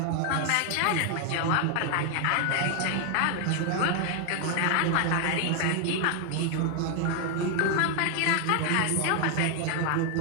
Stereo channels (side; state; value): both; different; correlation 0.00